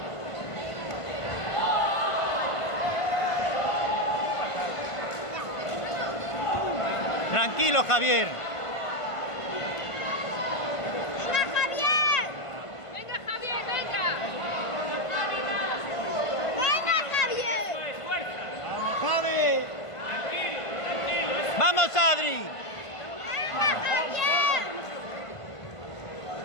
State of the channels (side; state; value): right; late; 1.5 ms